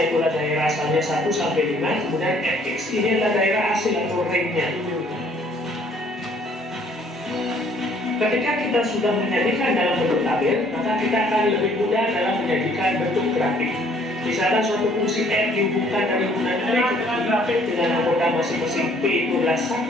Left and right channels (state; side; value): normal; both; correlation 0.61